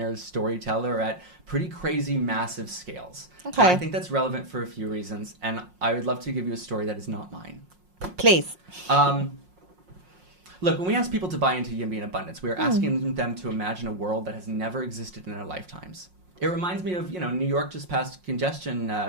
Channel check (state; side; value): late; left; 5.5 ms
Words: storyteller at pretty crazy, massive scales. Okay. And I think that's relevant for a few reasons, and I would love to give you a story that is not mine. Please. Look, when we ask people to buy into YIMBY in abundance, we are asking them to imagine a world that has never existed in their lifetimes. It reminds me of, New York just passed congestion